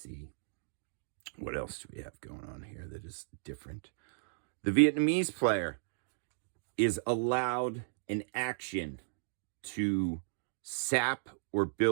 What else do we have going on here that is different? The Vietnamese player is allowed an action to sap or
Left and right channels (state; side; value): silent; left; digital silence